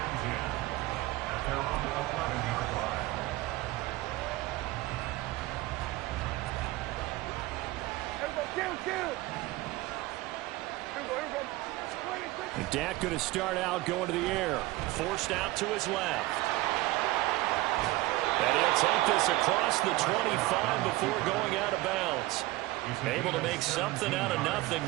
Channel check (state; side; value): quieter; left; 18.9 dB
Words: Dak going to start out going to the air. Forced out to his left. And he'll take this across the 25 before going out of bounds. Able to make something out of nothing